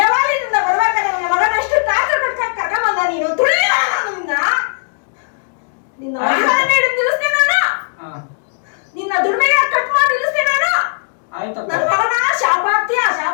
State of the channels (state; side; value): silent; right; digital silence